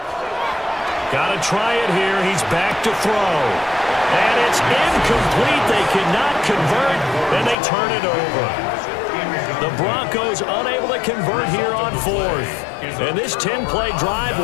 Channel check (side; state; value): right; drops out; at 7.6 s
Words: Got to try it here. He's back to throw. And it's incomplete. They cannot convert, and they turn it over. The Broncos unable to convert here on 4th. And this 10-play drive